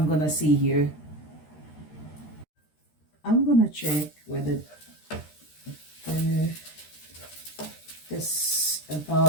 gonna see here. I'm gonna check whether this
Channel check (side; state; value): right; late; 13 ms